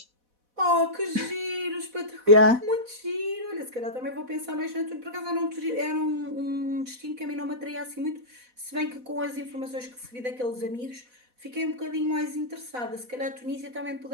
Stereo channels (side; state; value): left; late; 4.1 ms